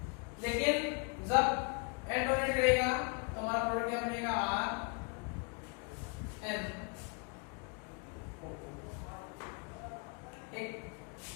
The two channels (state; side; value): quieter; right; 34.3 dB